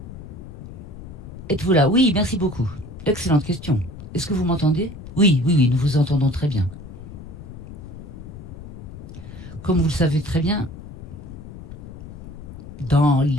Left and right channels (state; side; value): noise; left; rumble, 13 dB below the sound